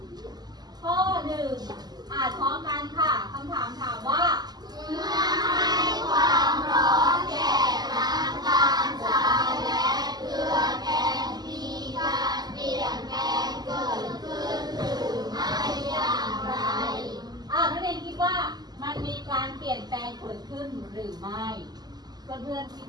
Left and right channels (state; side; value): late; left; 0.20 ms